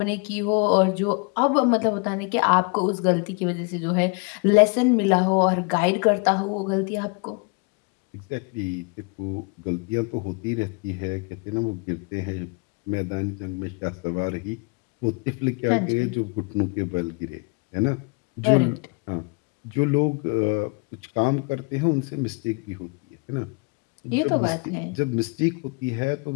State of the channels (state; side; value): quieter; right; 31.7 dB